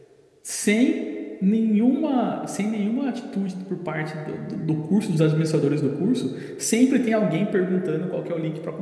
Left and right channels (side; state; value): both; identical; correlation 1.00